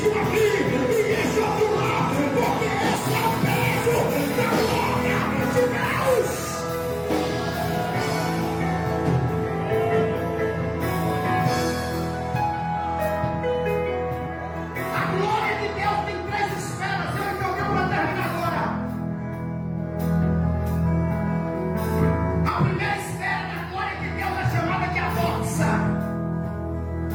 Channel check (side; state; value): both; identical; correlation 1.00